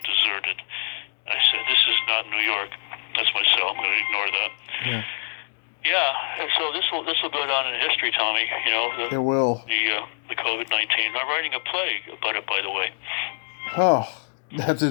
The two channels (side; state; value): right; silent; digital silence